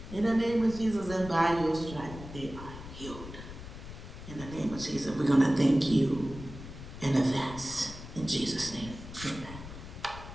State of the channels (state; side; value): noise; left; rumble, 12 dB below the sound